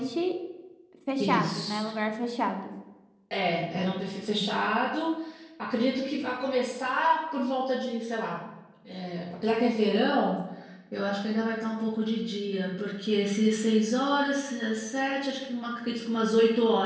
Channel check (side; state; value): both; identical; correlation 1.00